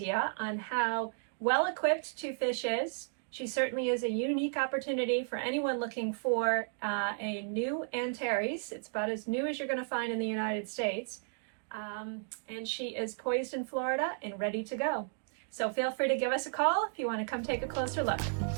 on how well equipped Two Fish is. She certainly is a unique opportunity for anyone looking for a new Antares. It's about as new as you're going to find in the United States. And she is poised in Florida and ready to go. So feel free to give us a call if you want to come take a closer look.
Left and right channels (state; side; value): silent; left; digital silence